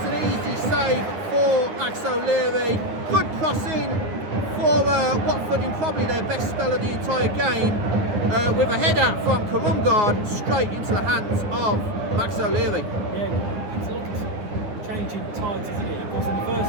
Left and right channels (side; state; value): left; late; 9.6 ms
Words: an easy save for Max O'Leary. Good crossing for Watford in probably their best spell of the entire game, with a header from Kurumgard straight into the hands of Max O'Leary. Yeah, it's a lot of changing tides, isn't it? Of course, in the first